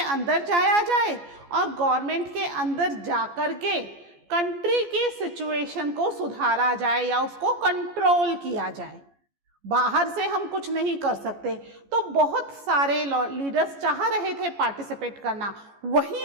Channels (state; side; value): late; left; 14 ms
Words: जाया जाए और गवर्नमेंट के अंदर जाकर के कंट्री की सिचुएशन को सुधारा जाए या उसको कंट्रोल किया जाए। बाहर से हम कुछ नहीं कर सकते। तो बहुत सारे लीडर्स चाह रहे थे पार्टिसिपेट करना,